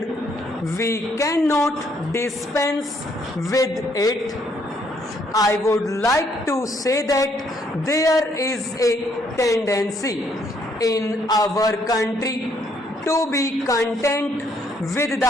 we cannot dispense with it. I would like to say that there is a tendency in our country to be content with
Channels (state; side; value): normal; both; correlation 0.69